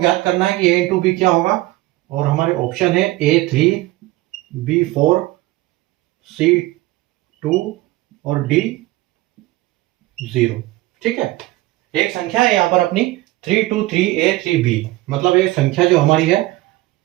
करना है कि A इंटू बी क्या होगा, और हमारे ऑप्शन है A3, B4, C2 और D0। ठीक है, एक संख्या है यहाँ पर अपनी 323A3B, मतलब एक संख्या जो हमारी है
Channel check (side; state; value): left; quieter; 18.5 dB